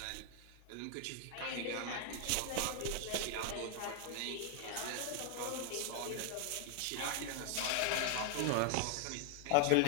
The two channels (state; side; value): different; both; correlation 0.00